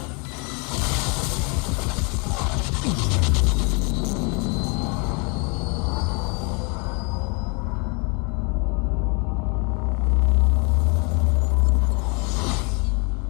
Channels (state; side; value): quieter; right; 33.6 dB